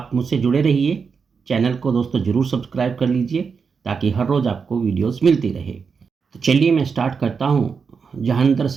मुझसे जुड़े रहिए। चैनल को दोस्तों ज़रूर सब्सक्राइब कर लीजिए ताकि हर रोज़ आपको वीडियोस मिलती रहे। तो चलिए मैं स्टार्ट करता हूँ जहांगीर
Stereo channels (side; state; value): left; quieter; 5.6 dB